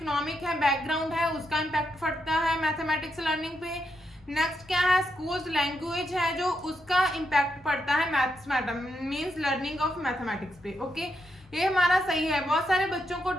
है बैकग्राउंड है उसका इम्पैक्ट पड़ता है मैथमेटिक्स लर्निंग पे। नेक्स्ट क्या है? स्कूल्स लैंग्वेज है जो उसका इम्पैक्ट पड़ता है maths means learning of mathematics पे। ओके, ये हमारा सही है। बहुत सारे बच्चों को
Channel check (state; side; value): normal; both; correlation 0.82